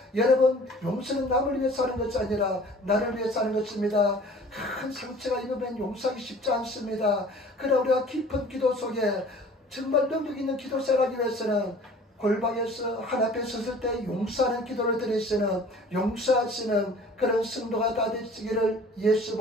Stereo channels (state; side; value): normal; both; correlation 0.48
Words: 여러분, 용서는 남을 위해서 하는 것이 아니라 나를 위해서 하는 것입니다. 큰 상처가 입으면 용서하기 쉽지 않습니다. 그러나 우리가 깊은 기도 속에 정말 능력 있는 기도 생활하기 위해서는 골방에서 하나님께 섰을 때 용서하는 기도를 드리시는, 용서하시는 그런 성도가 다 되시기를